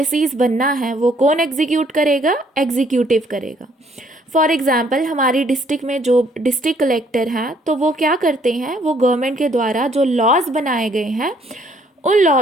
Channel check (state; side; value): normal; both; correlation 0.65